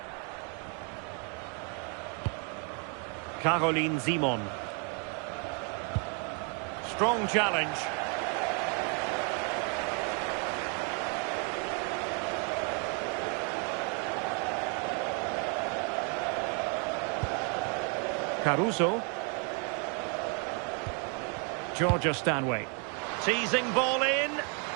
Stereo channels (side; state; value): left; quieter; 37.5 dB